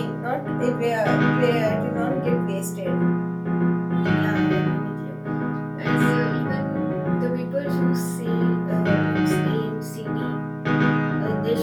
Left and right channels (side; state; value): both; identical; correlation 1.00